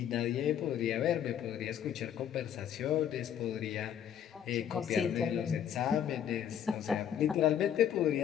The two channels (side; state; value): right; quieter; 9.5 dB